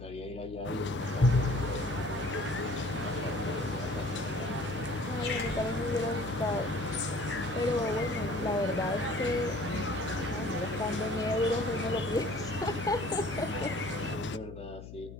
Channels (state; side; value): noise; left; hum, 13 dB below the sound